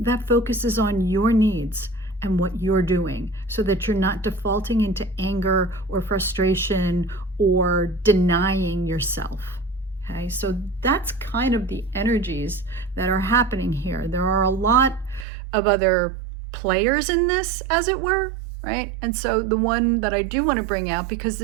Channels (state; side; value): drops out; left; at 15.2 s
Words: focuses on your needs and what you're doing so that you're not defaulting into anger or frustration or denying yourself. Okay, so that's kind of the energies that are happening here. There are a lot of other players in this, as it were, right? And so the one that I do want to bring out, because